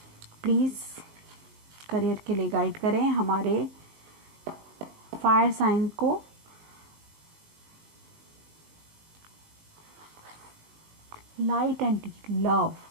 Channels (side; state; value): left; late; 19 ms